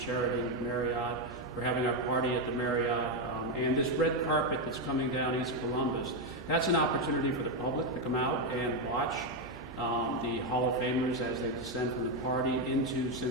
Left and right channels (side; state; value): right; noise; hum, 18 dB below the sound